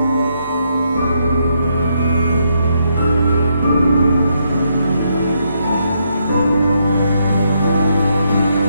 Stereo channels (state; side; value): inverted; both; correlation -0.77